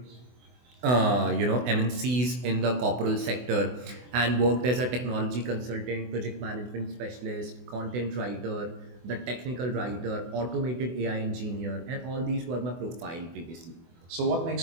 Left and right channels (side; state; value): left; late; 24 ms